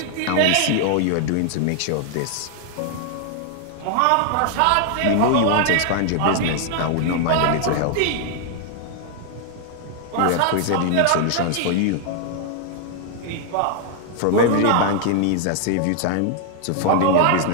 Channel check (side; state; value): both; different; correlation 0.00